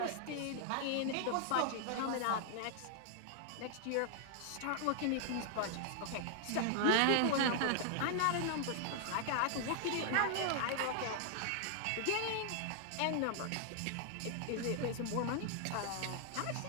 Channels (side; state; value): both; different; correlation 0.00